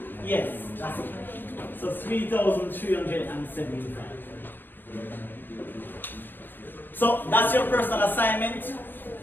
Yes, that's it. So 3,375. So that's your personal assignment.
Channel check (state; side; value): late; right; 0.094 ms